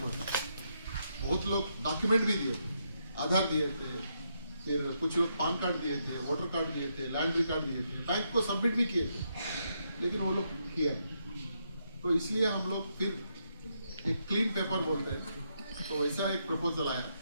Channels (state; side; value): inverted; both; correlation -0.79